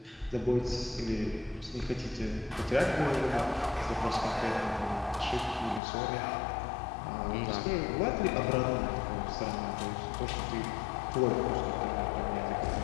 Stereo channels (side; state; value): right; drops out; at 5.8 s